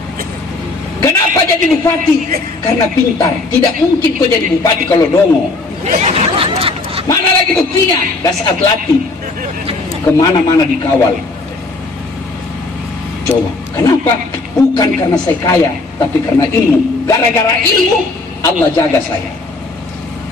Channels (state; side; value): quieter; right; 3.4 dB